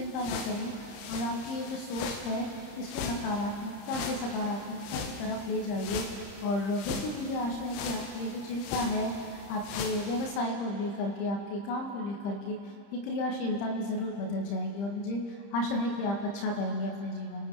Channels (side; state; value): right; late; 30 ms